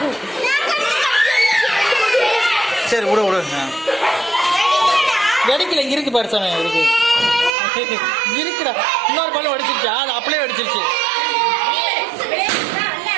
சரி விடு விடு. வெடிக்கல, இங்க இருக்கு பாரு சாமி, இருக்கு இருக்குடா. இன்னொரு பழம் வெடிச்சிருச்சா? அது அப்படியே வெடிச்சிருச்சு.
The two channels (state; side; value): drops out; left; at 7.6 s